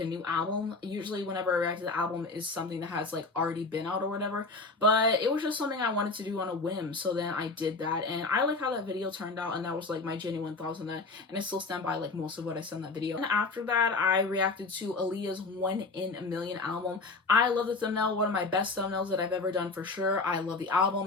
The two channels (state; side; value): quieter; right; 3.7 dB